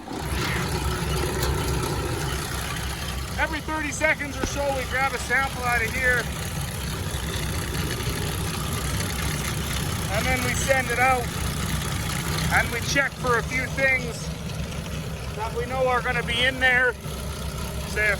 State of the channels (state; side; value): identical; both; correlation 1.00